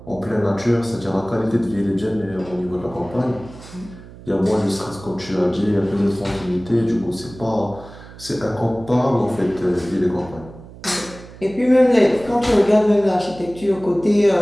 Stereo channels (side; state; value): right; noise; hum, 18 dB below the sound